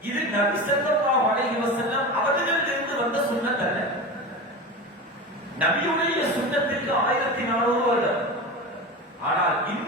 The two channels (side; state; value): both; normal; correlation 0.27